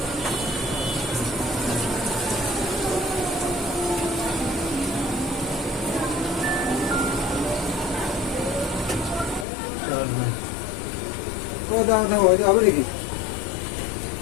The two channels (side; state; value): right; drops out; at 9.5 s